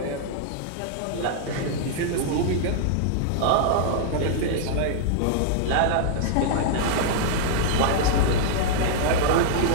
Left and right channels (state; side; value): different; both; correlation -0.01